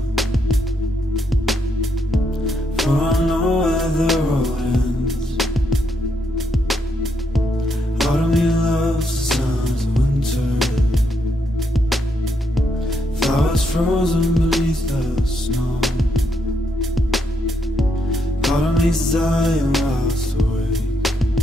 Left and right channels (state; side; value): normal; both; correlation 0.77